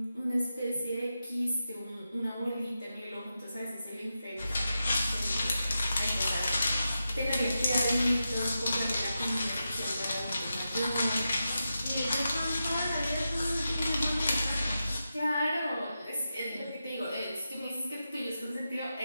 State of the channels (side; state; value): both; inverted; correlation -0.89